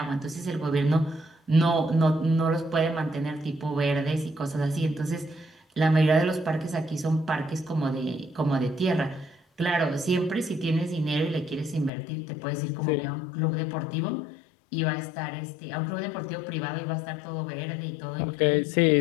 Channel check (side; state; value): right; drops out; at 11.9 s